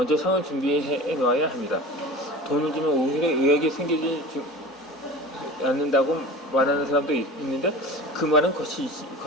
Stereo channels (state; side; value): normal; both; correlation 0.36